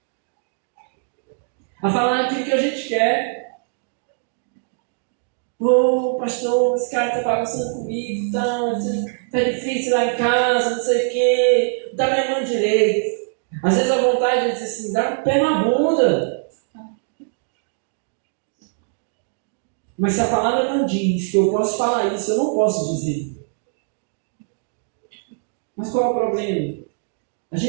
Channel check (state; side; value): silent; left; digital silence